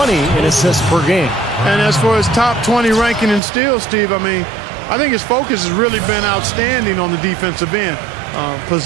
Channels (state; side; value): drops out; left; at 3.4 s